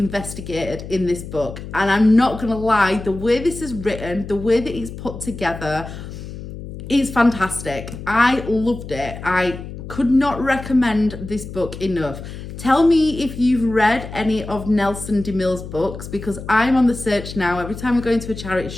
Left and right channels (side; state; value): left; noise; hum, 11 dB below the sound